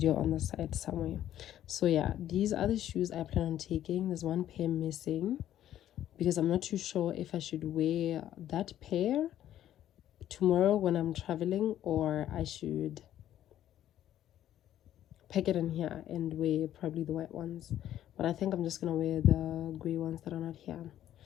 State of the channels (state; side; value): quieter; right; 11.9 dB